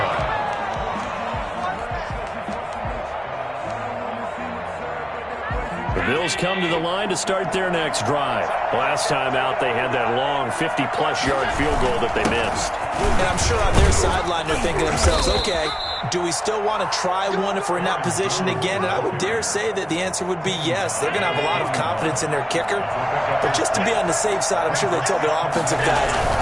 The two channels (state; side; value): identical; both; correlation 1.00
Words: The Bills come to the line to start their next drive. Last time out, they had that long 50-plus yard field goal that they missed. And I'm sure on their sideline they're thinking to themselves, okay, do we still want to try one if we're in that position again? And I would dare say that the answer would be yes. They're going to have a lot of confidence in their kicker. But just to be on the safe side, I'm sure they told their offensive guys,